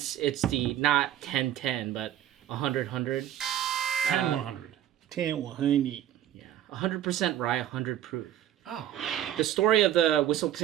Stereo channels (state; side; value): quieter; left; 11.6 dB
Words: it's the not 1010, but 100. 100. 10-100. Yeah, 100% rye, 100 proof. Oh. The story of the It says